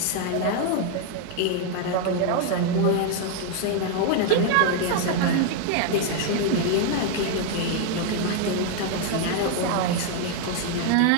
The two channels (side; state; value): both; different; correlation 0.00